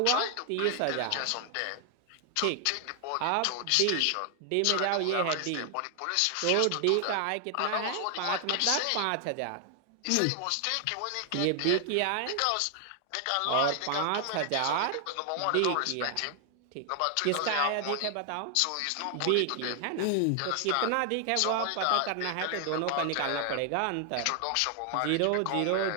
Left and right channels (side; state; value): both; different; correlation 0.00